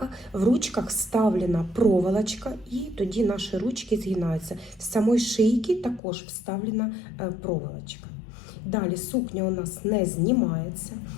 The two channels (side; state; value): right; drops out; at 6.0 s